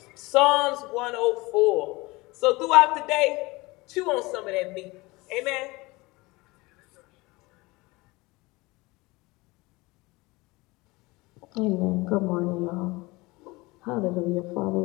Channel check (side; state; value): right; quieter; 22.8 dB